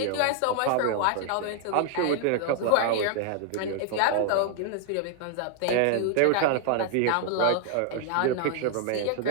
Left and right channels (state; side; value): different; both; correlation 0.00